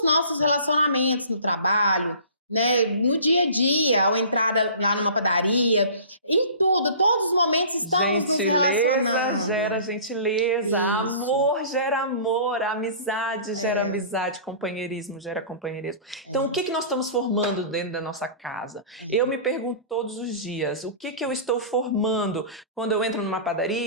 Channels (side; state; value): both; inverted; correlation -0.42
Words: nossos relacionamentos no trabalho, né? No dia a dia, ao entrar lá numa padaria, em tudo, todos os momentos estamos nos relacionando. Gera gentileza, amor gera amor, amizade gera amizade, companheirismo gera companheirismo. Então, o que nós estamos formando dentro da nossa casa? Eu me pergunto todos os dias, o que eu estou formando quando eu entro numa